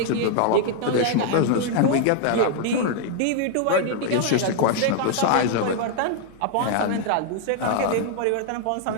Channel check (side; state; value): both; different; correlation 0.00